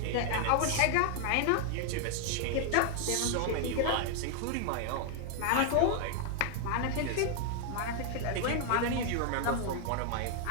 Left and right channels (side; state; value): both; different; correlation 0.00